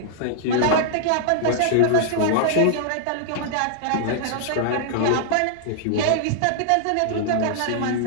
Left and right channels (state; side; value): different; both; correlation -0.01